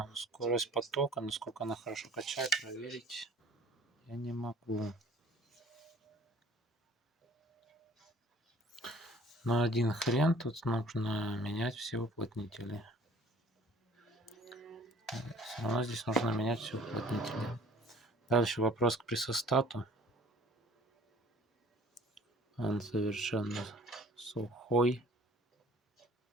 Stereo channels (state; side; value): normal; both; correlation 0.51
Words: скорость потока, насколько она хорошо качает, проверить я не могу. Но один хрен, тут нужно менять все уплотнители. Все равно здесь нужно менять все уплотнители. Дальше вопрос к пресостату. Он совершенно сухой.